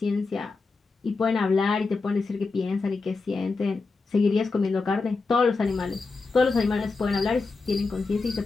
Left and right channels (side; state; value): right; quieter; 4.0 dB